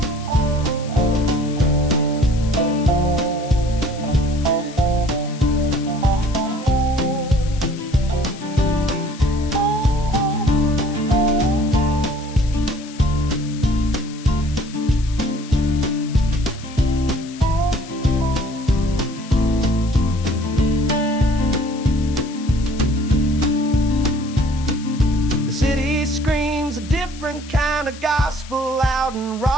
Different kind of gospel, loud and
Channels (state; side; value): noise; left; hiss, 18 dB below the sound